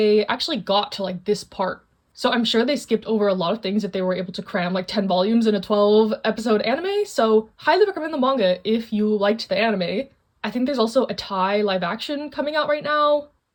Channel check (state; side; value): identical; both; correlation 1.00